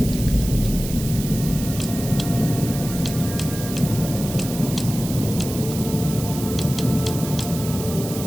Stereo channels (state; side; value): noise; right; hiss, 10 dB below the sound